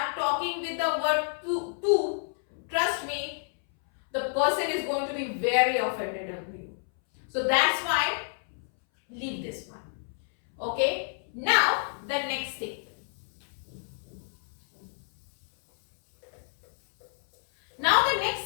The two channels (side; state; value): right; silent; 59 dB below the other